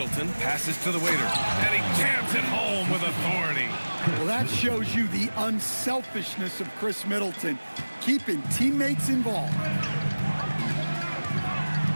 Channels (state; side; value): inverted; both; correlation -1.00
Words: passes to the waiter, and he jams it home with authority. Well, that shows you the unselfishness of Chris Middleton, keeping teammates involved.